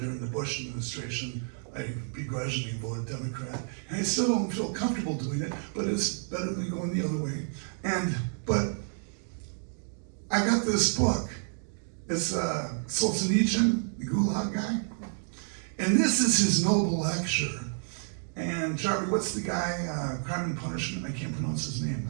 the Bush administration, I begrudgingly voted Democrat. And I still don't feel comfortable doing it, but it's better than going the other way. But I got this book. It's Solzhenitsyn, the Gulag guy. And this is his noble lecture. And Charlie, what's the guy, Crime and Punishment? I can't pronounce his name.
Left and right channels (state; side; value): silent; left; digital silence